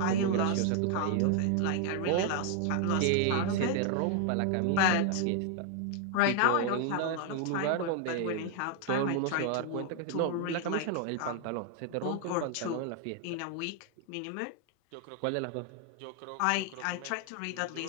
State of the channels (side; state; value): both; different; correlation 0.00